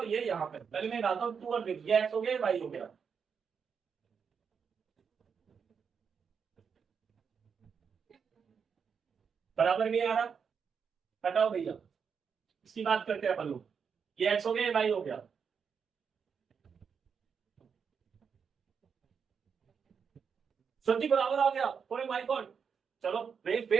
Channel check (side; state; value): left; quieter; 6.4 dB